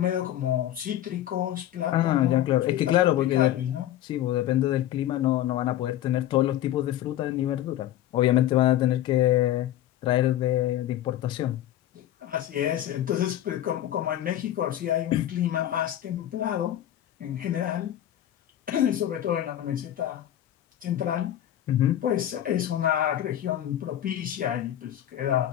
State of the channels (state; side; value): quieter; right; 12.4 dB